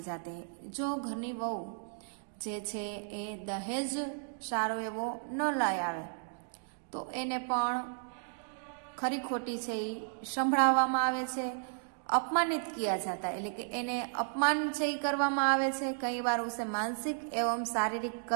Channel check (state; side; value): silent; left; digital silence